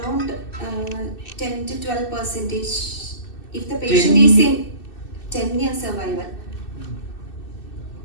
10 to 12%. If the patient is in 10-year survival.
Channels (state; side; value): late; right; 2.6 ms